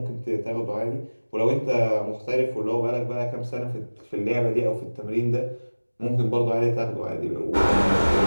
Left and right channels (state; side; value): inverted; both; correlation -1.00